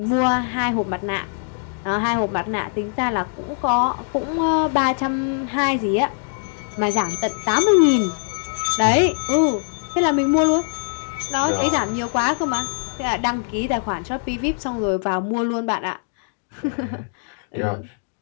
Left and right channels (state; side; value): silent; right; digital silence